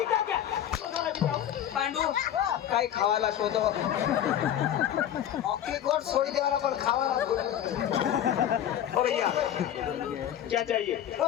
क्या? लोज वाला दिखाओ। पांडू काय खावायला शोधो अख्खी गोट सोडी देवाला पण खावाला बोललो. ओ भैया, क्या चाहिए?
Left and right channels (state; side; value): quieter; right; 10.7 dB